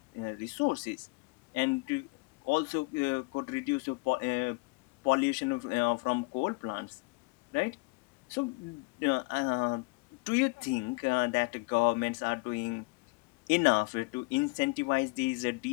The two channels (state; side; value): quieter; right; 28.0 dB